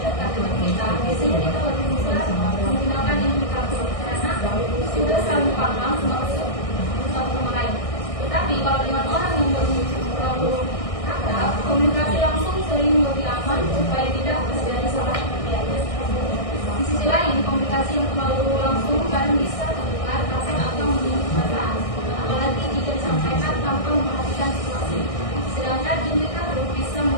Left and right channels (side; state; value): right; late; 1.6 ms